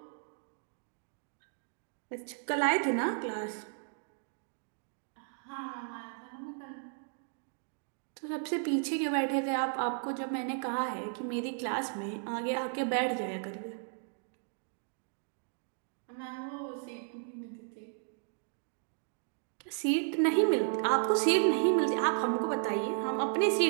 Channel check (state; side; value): silent; left; digital silence